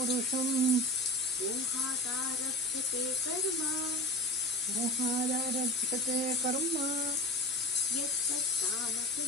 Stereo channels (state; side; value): normal; both; correlation 0.31